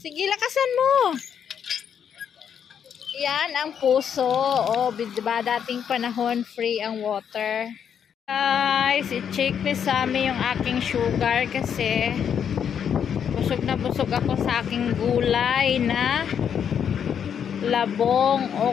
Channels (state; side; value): quieter; right; 8.1 dB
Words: lakasan mo. Yan ang puso. O, diba dating panahon free ang water. Guys, i-check ni Sammy yung aking sugar kasi busog na busog ako sa aking gulay na labong,